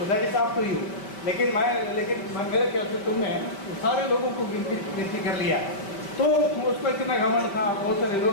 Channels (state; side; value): late; right; 5.1 ms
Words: that is up to you. लेकिन मेरे ख्याल से तुमने सारे लोगों को गिनती कर लिया, तो उसको इतना घमंड था, बहुत सारे लोग